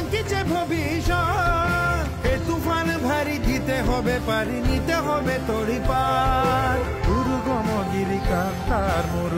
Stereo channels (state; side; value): identical; both; correlation 1.00